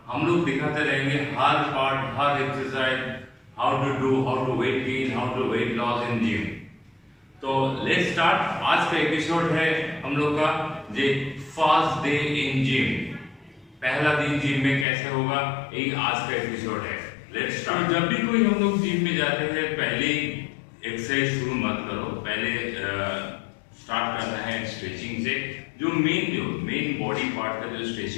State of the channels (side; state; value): right; drops out; at 14.9 s